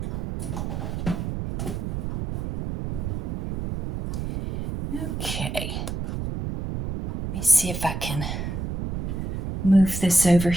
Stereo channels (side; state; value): right; noise; rumble, 4 dB below the sound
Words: Okay, let me see if I can move this over